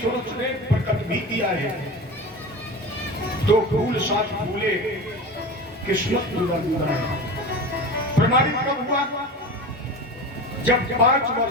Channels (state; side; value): normal; both; correlation 0.30